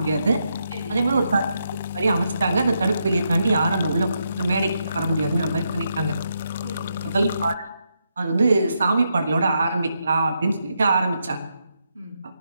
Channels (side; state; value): both; inverted; correlation -0.82